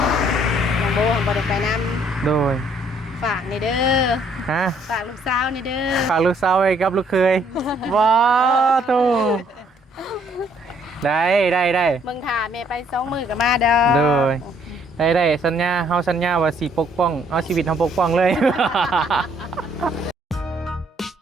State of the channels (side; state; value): both; normal; correlation 0.65